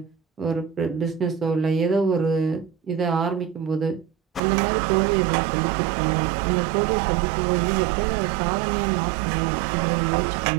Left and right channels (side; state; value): left; drops out; at 4.4 s